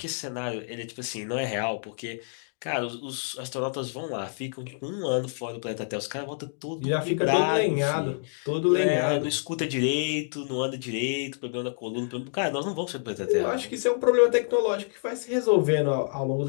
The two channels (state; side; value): silent; right; digital silence